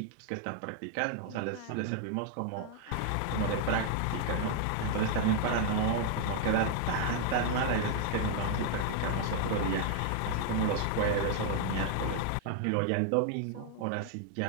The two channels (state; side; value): different; both; correlation 0.00